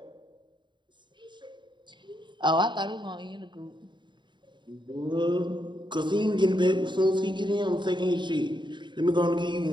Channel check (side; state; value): left; late; 0.23 ms